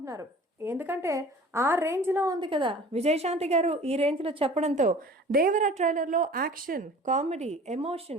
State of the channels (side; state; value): both; normal; correlation 0.44